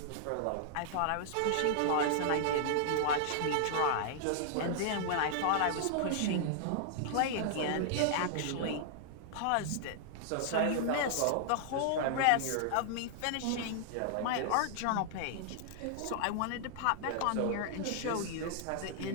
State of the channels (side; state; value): both; different; correlation -0.01